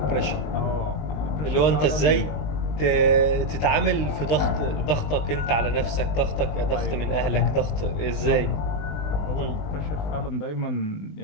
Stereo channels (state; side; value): late; right; 20 ms